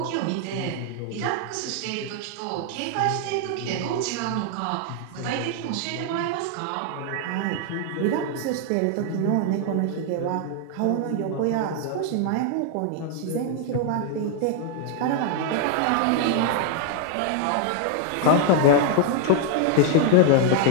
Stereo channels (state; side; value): different; both; correlation 0.00